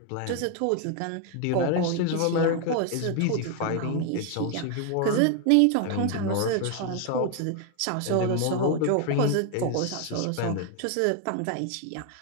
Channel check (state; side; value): different; both; correlation 0.01